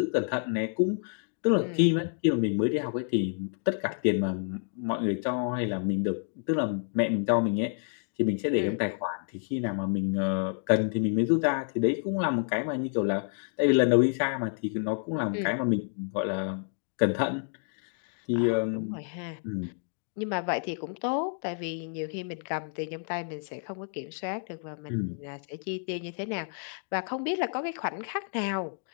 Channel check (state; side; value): silent; right; 58 dB below the other